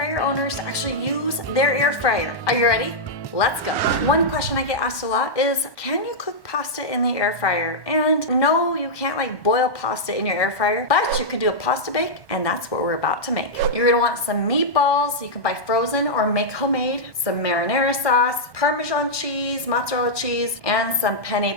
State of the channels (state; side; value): late; right; 1.4 ms